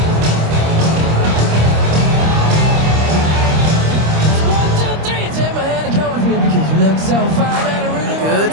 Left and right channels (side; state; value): left; late; 26 ms